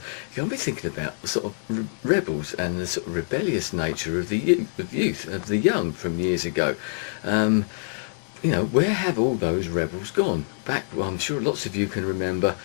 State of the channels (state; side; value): silent; right; digital silence